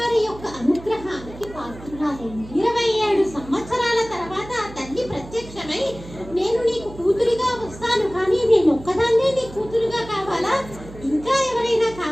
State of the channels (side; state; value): right; noise; hum, 16 dB below the sound